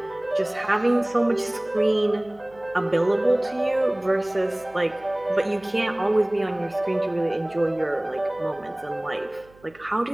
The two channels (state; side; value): noise; right; hum, 27 dB below the sound